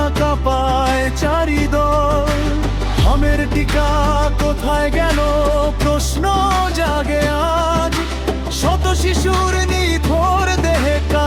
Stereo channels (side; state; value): both; identical; correlation 1.00